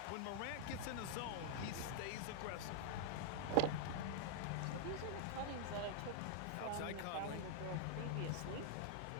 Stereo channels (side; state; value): both; different; correlation 0.00